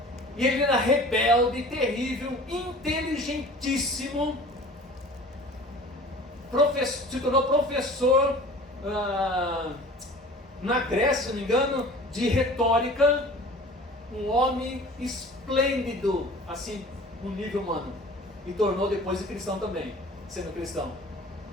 E ele era rebelde, terrível, inteligentíssimo, se tornou professor na Grécia, se não me engano, de retórica, um homem esplêndido, assim, no nível humano, e tornou depois de cristão também, sendo cristão.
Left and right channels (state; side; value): normal; both; correlation 0.43